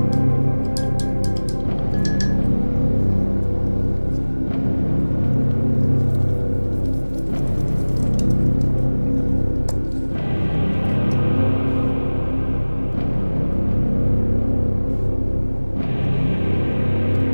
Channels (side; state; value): both; inverted; correlation -1.00